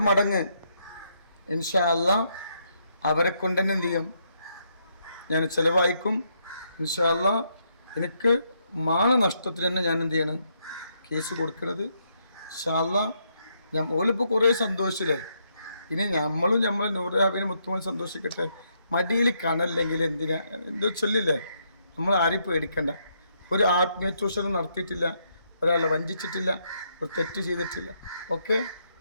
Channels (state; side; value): inverted; both; correlation -0.76